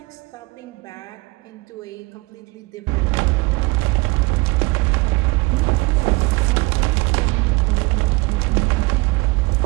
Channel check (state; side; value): quieter; left; 24.6 dB